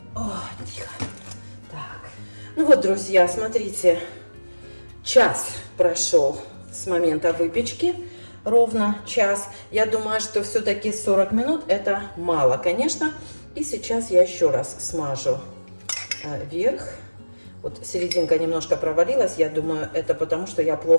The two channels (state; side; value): inverted; both; correlation -1.00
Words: О, тихо. Так. Ну вот, друзья, смотрите. Час прошел с момента выпечки. Ровно час. Я думаю, что все-таки 40 минут это мало, конечно. И сейчас я еще раз смажу верх. Вот серединка немножко провалилась. Я думаю, это потому, что я